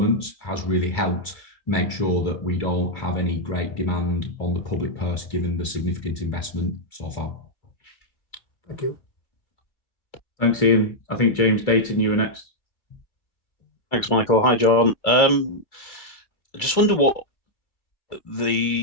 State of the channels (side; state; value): right; late; 2.4 ms